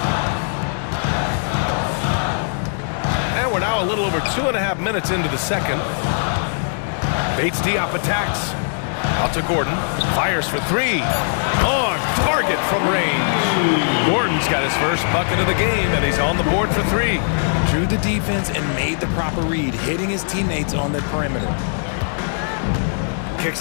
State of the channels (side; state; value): right; silent; digital silence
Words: And we're now a little over 2.5 minutes into the second. Bates Diop attacks. Out to Gordon. Fires for three. On target from range. Gordon's got his first bucket of the game, and he's on the board for three. Drew the defense and made the proper read, hitting his teammates on the perimeter.